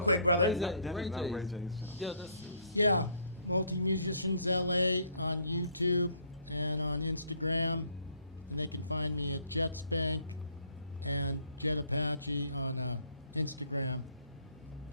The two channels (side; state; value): both; inverted; correlation -0.63